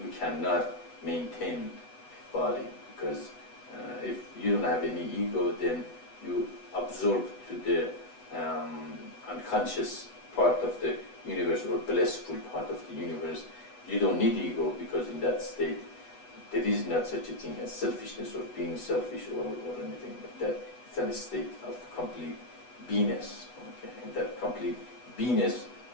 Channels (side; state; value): right; late; 8.1 ms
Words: cannot maintain body, because if you don't have any ego, then you absorb to the unconscious part of the universe or blissful part of the universe. You don't need ego, because in that state there is not such a thing as selfishness or being selfish or anything like that. It's a state of complete beingness. Okay? In that complete beingness,